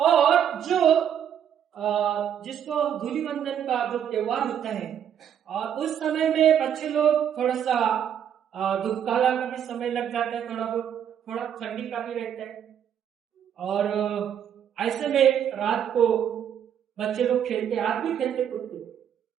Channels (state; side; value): quieter; left; 9.1 dB